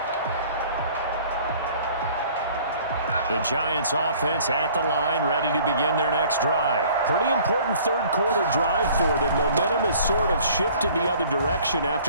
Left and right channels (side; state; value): both; inverted; correlation -0.53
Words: The Giants offense at the line, ready to begin their next drive. Pretty important 3rd quarter drive for them. Momentum has sort of shifted the other direction